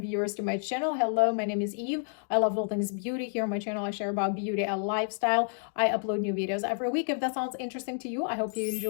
viewers to my channel. Hello, my name is Eve. I love all things beauty. Here on my channel, I share about beauty and lifestyle. I upload new videos every week. If that sounds interesting to you, I hope you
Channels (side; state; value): right; silent; digital silence